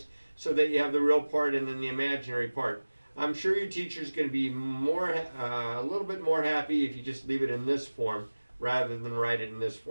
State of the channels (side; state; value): both; inverted; correlation -1.00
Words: so that you have the real part and then the imaginary part. I'm sure your teacher's going to be a little bit more happy if you just leave it in this form rather than write it in this